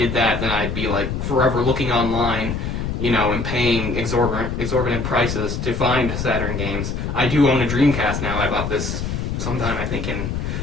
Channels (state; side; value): noise; left; rumble, 3 dB below the sound